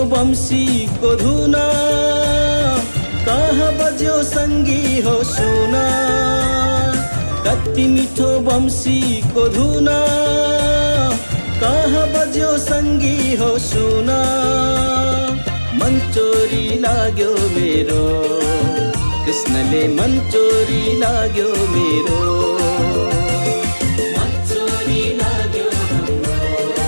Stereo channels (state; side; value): inverted; both; correlation -1.00